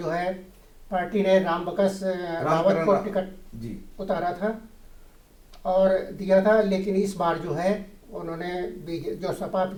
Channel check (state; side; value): identical; both; correlation 1.00